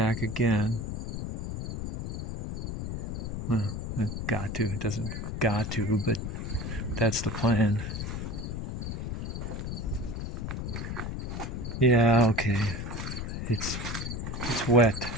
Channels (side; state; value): left; noise; rumble, 4 dB below the sound